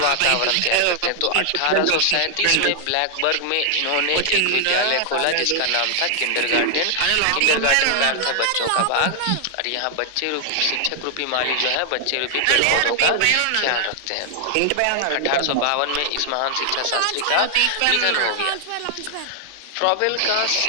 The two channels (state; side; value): different; both; correlation 0.00